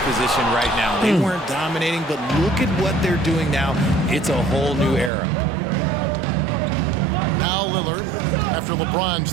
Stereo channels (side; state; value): left; drops out; at 5.1 s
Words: right now. They weren't dominating, but look at what they're doing now. It's a whole new era. Now Lillard, after LeBron's